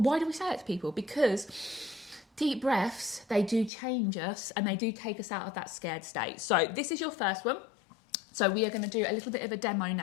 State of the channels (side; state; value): right; drops out; at 3.7 s